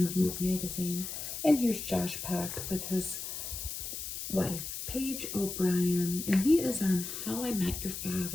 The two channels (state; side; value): noise; left; hiss, 6 dB below the sound